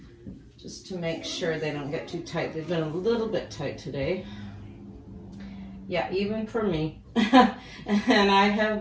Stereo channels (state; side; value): identical; both; correlation 1.00